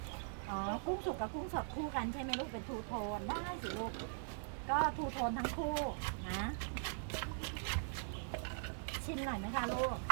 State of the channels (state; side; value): silent; left; digital silence